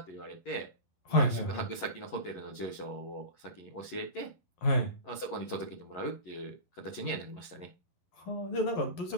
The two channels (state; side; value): late; right; 11 ms